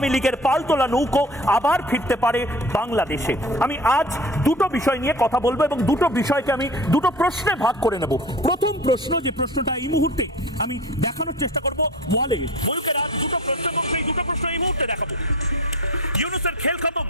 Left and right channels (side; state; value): both; normal; correlation 0.37